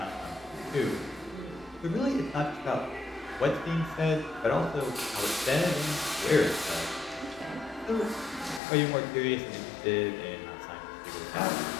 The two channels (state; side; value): drops out; right; at 8.6 s